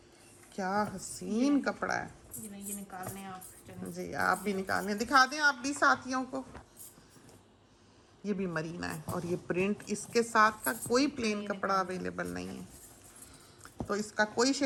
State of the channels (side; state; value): both; identical; correlation 1.00